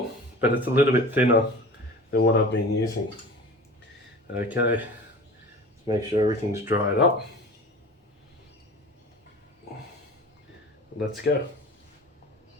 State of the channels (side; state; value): both; normal; correlation 0.38